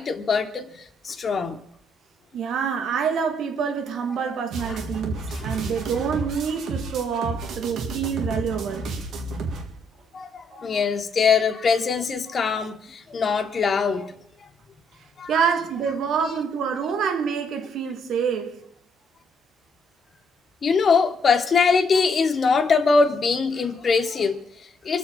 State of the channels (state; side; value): normal; both; correlation 0.71